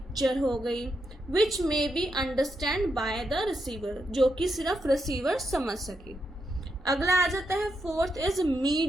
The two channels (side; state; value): both; normal; correlation 0.83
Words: हो गई, which may be understand by the receiver, जो कि सिर्फ रिसीवर समझ सके. अगला आ जाता है फोर्थ इज